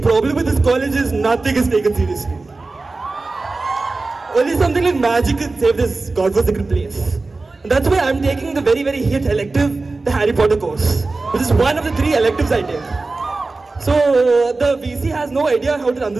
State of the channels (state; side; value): quieter; left; 3.5 dB